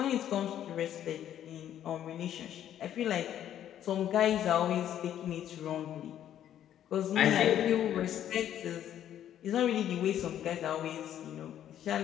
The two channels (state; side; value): quieter; right; 10.8 dB